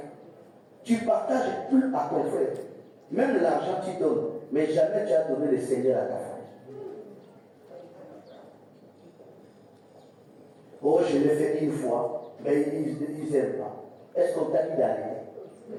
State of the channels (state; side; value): identical; both; correlation 1.00